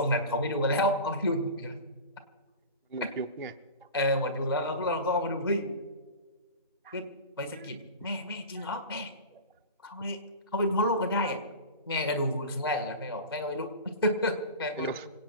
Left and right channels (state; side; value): inverted; both; correlation -0.31